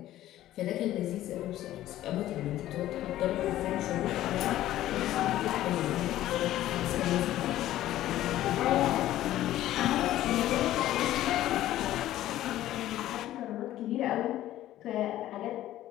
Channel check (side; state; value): right; quieter; 13.9 dB